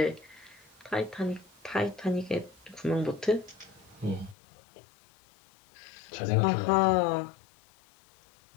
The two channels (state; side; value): drops out; right; at 4.4 s